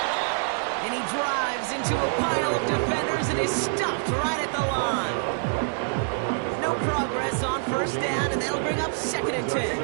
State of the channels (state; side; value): silent; left; digital silence